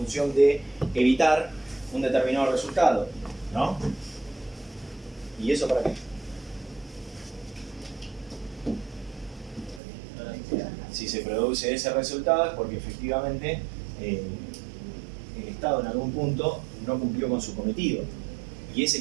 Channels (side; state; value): left; drops out; at 9.8 s